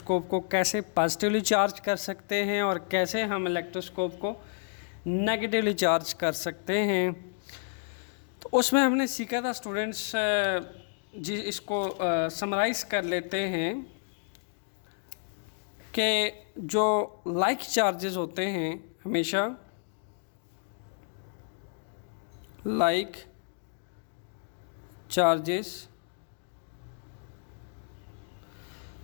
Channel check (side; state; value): right; silent; digital silence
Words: को कैसे पॉजिटिवली चार्ज कर सकते हैं और कैसे हम इलेक्ट्रोस्कोप को नेगेटिवली चार्ज कर सकते हैं। तो उसमें हमने सीखा था स्टूडेंट्स जी, इसको समराइज़ कर लेते हैं कि जो लाइक चार्जेस होते हैं हमेशा like charges